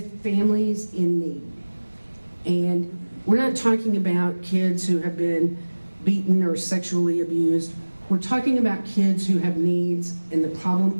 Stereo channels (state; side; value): inverted; both; correlation -1.00